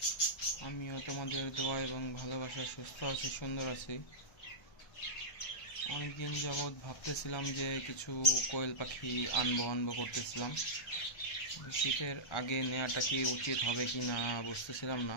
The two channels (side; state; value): right; late; 1.3 ms